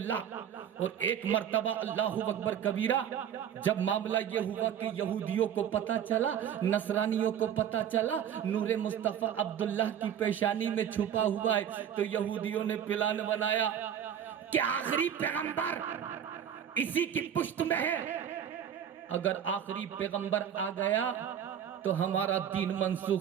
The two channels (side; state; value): left; quieter; 9.1 dB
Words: اور ایک مرتبہ اللہ اکبر کبیرہ جب معاملہ یہ ہوا کہ یہودیوں کو پتہ چلا، نصرانیوں کو پتہ چلا نور مصطفیٰ عبداللہ کی پیشانی میں چھپا ہوا ہے، تو یہودیوں نے پلان بنایا کہ آخری پیغمبر اسی کی پشت میں ہے، اگر آخری پیغمبر آ گیا تو ہمارا دین